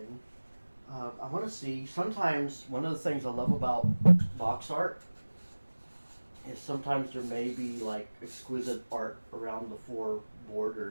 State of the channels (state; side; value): inverted; both; correlation -1.00